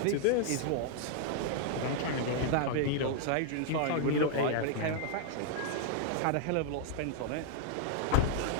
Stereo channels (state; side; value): different; both; correlation 0.00